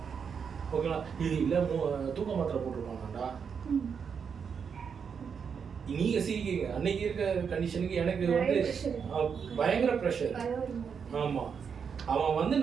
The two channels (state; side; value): quieter; left; 6.6 dB